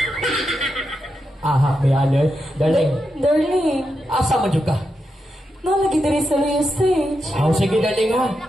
Aha, may ano eh. Darling, Darling, asa man dyan ka? nalagi diri sa Luyo Stage. Oh, sige darling ha.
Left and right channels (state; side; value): normal; both; correlation 0.86